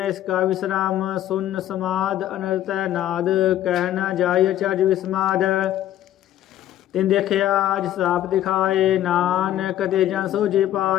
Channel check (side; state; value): right; quieter; 12.4 dB